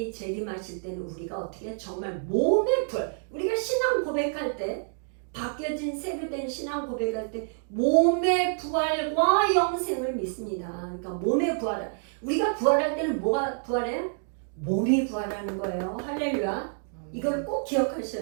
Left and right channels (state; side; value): silent; left; digital silence